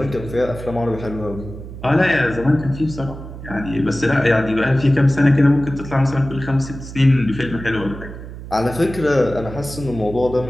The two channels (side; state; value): right; noise; hum, 12 dB below the sound